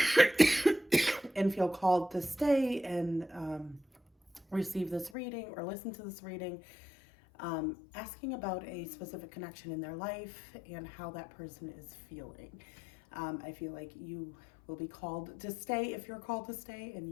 feel called to stay and receive this reading or listen to this reading, asking about a specific connection in their life and how that person is feeling. I feel like you will be called to stay if you're called to stay, and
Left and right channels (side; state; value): right; drops out; at 5.1 s